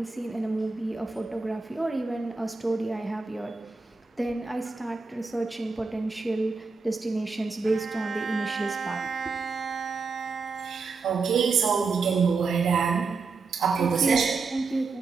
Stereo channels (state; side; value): quieter; left; 4.4 dB